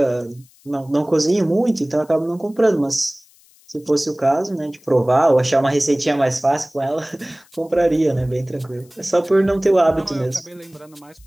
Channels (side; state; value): left; noise; hiss, 29 dB below the sound